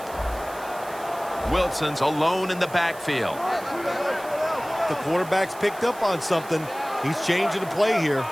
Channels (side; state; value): right; noise; hiss, 19 dB below the sound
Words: Wilson's alone in the backfield. The quarterback's picked up on something. He's changing the play here.